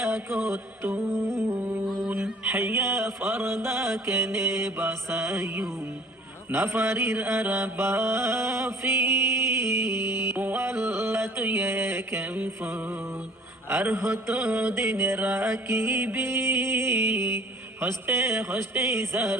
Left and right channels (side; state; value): both; normal; correlation 0.51